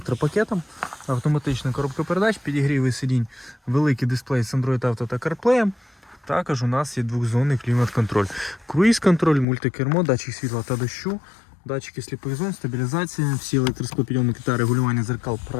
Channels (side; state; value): right; drops out; at 9.5 s